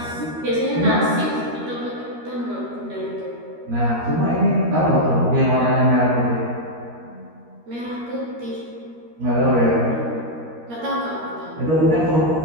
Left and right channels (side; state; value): left; late; 13 ms